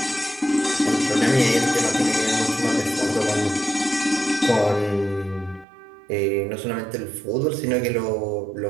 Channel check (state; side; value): drops out; left; at 5.7 s